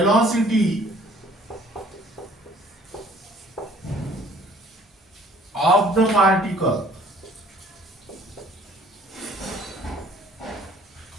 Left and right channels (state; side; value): normal; both; correlation 0.55